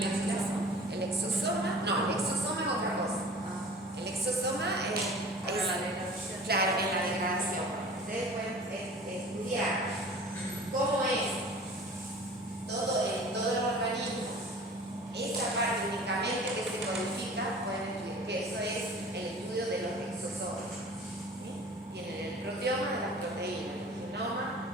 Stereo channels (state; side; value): normal; both; correlation 0.43